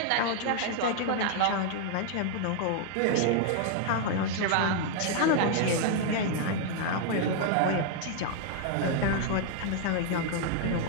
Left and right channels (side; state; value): both; different; correlation 0.00